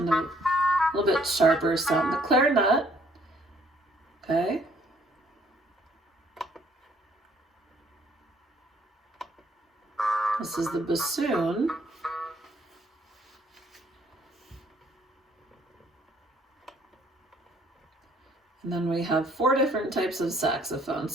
of a little bit sharper sound. The clarinet, okay. This is the bassoon. And then we have 4 different types of saxophone.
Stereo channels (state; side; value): normal; both; correlation 0.63